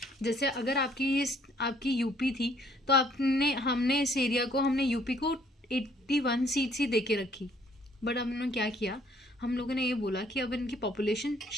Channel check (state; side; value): normal; both; correlation 0.63